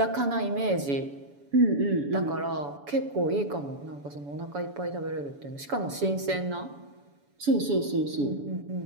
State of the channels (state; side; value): late; left; 7.0 ms